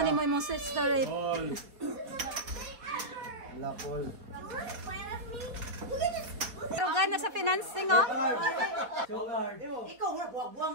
mo imong sister rate. All. Lakol. Ibarugan na sa financing oh.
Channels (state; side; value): late; left; 4.2 ms